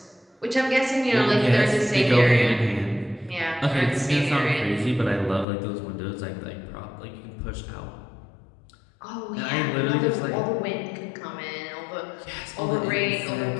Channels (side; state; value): right; drops out; at 5.5 s